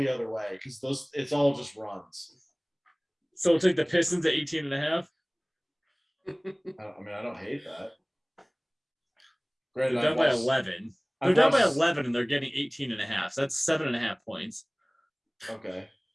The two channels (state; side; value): identical; both; correlation 1.00